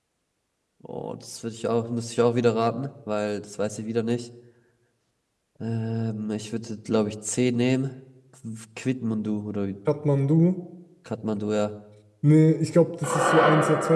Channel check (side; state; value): both; identical; correlation 1.00